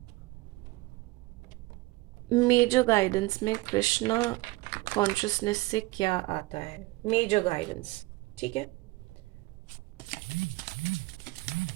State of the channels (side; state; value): left; quieter; 21.5 dB